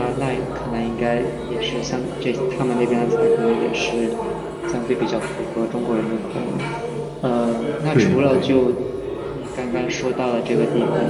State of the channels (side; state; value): both; identical; correlation 1.00